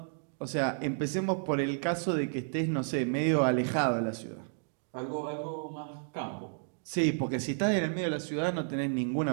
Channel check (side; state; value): left; silent; digital silence